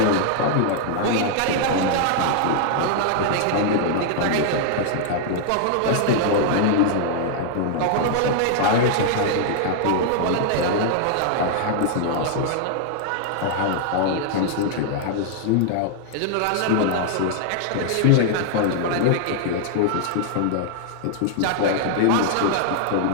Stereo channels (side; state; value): both; different; correlation -0.01